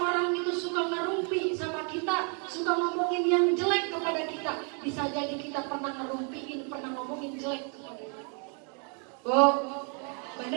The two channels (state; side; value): quieter; left; 39.8 dB